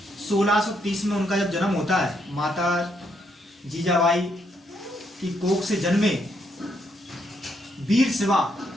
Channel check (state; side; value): normal; both; correlation 0.76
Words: 1630 में उनका जब जन्म होता है, माता जीजाबाई की कोख से जन्मे वीर शिवा,